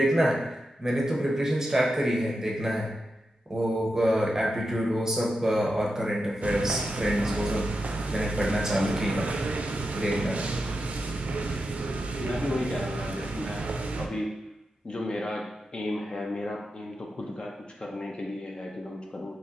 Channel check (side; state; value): both; normal; correlation 0.88